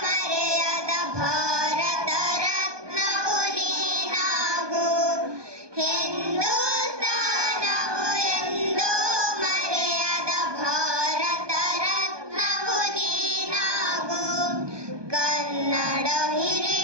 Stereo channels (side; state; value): left; late; 1.2 ms